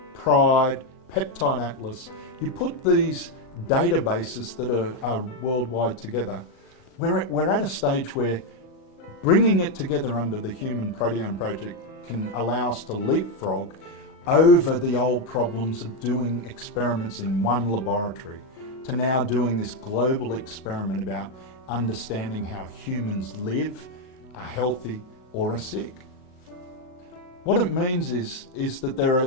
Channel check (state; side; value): late; right; 39 ms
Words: PRIDE, Peptide Atlas, you put these databases that are worldwide together, we're at a stage where bringing it together under the Human Proteome Project can allow us to leapfrog over the old problems of doing experiments in one laboratory to now doing this global experiment about understanding how humans live, are healthy or are sick. What it means is that there